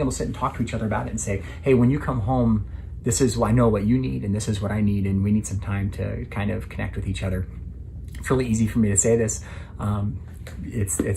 to sit and talk to each other about it and say, hey, when you come home, this is, I know what you need and this is what I need, and we need some time to kind of connect with each other. It's really easy for me to say this.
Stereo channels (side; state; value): both; identical; correlation 1.00